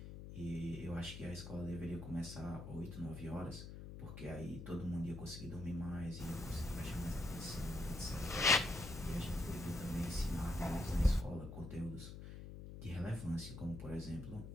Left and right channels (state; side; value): noise; left; hum, 10 dB below the sound